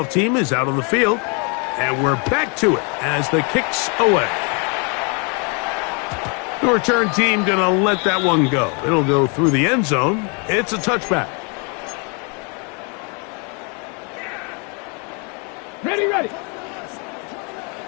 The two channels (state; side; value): quieter; right; 34.9 dB